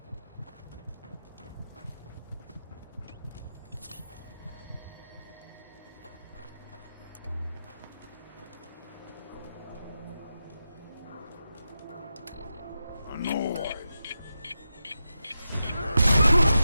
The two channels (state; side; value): inverted; both; correlation -0.89